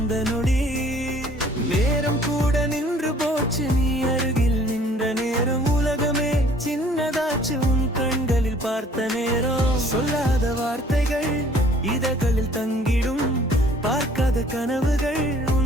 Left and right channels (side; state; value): both; normal; correlation 0.56